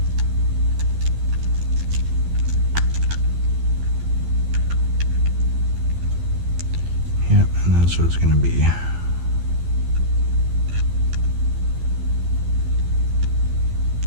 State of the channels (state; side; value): late; left; 12 ms